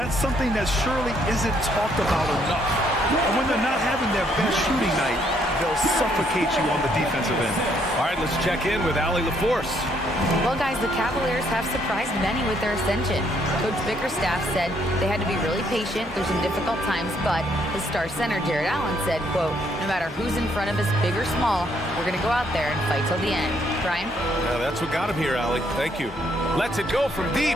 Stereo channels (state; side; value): normal; both; correlation 0.70